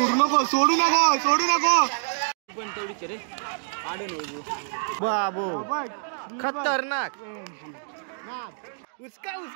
नको सोडू नको सोडू नको पण तेवढीच रे आडे नाही बाबू खतरनाक उसका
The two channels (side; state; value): left; silent; digital silence